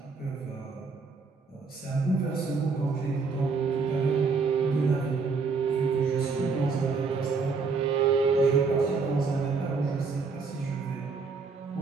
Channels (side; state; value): left; quieter; 4.7 dB